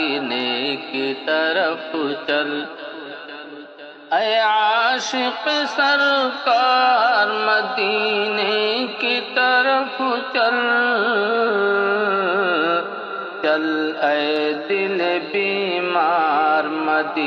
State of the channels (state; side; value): identical; both; correlation 1.00